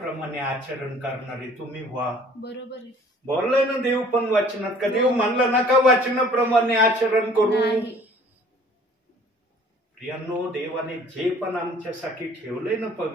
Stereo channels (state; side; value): normal; both; correlation 0.53